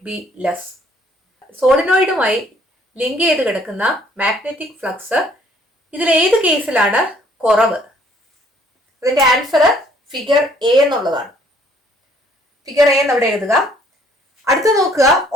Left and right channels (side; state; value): both; normal; correlation 0.61